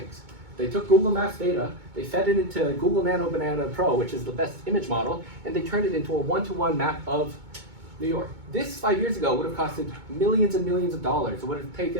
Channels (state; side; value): late; left; 2.2 ms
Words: They took Google Maps data, they fed it into Google Nano Banana Pro, which is the best image model, and they turned it into a one-to-one map of New York. This 5 years ago would have costed millions and millions of dollars. It would have